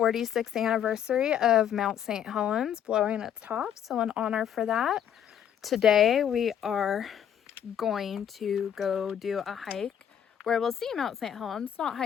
anniversary of Mount St. Helens blowing its top. So in honor for that, today we are going to go do a hike where we'll see Mount St. Helens, not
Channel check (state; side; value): quieter; right; 9.4 dB